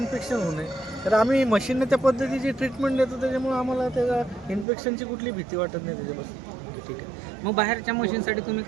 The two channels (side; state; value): left; drops out; at 4.7 s